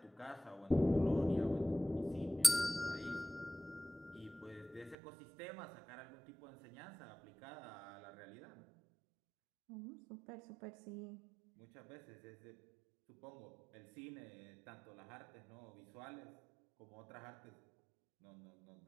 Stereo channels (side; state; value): left; drops out; at 5.0 s